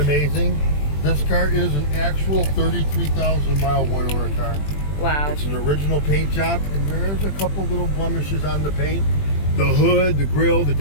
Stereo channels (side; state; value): right; late; 20 ms